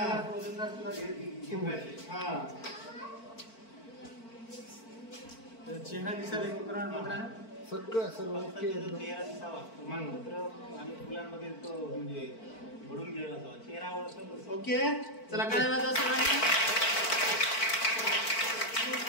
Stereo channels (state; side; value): late; right; 4.5 ms